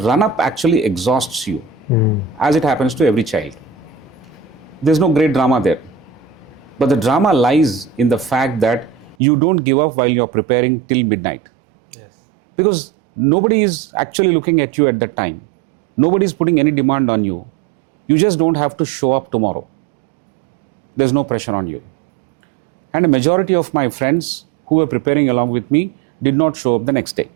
actually exhausts you, as it happens to every child. There's no great drama there. But the drama lies in the fact that you don't give up while you're preparing till midnight. Yes. Because nobody is actually looking at you at that time. Nobody's putting any demand on you. You just don't have to show up tomorrow. There's no pressure on you. And a majority of my friends who were preparing along with me did not show up the next day.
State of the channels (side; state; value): left; drops out; at 9.2 s